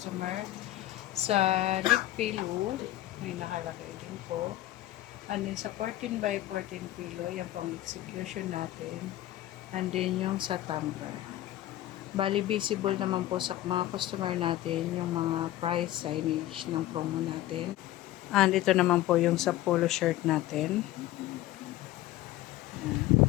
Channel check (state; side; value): quieter; right; 15.0 dB